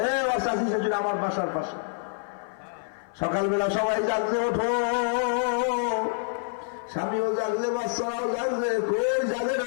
চাষি শাশুড়ি আমার বাসার পাশে। সকালবেলা সবাই জাগছে, ওঠো। স্বামীও জাগছে, বাচ্চারাও জাগছে, কই জাগে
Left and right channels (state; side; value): silent; right; 55 dB below the other